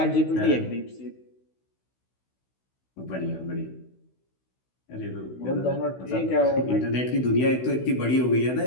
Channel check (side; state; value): right; late; 16 ms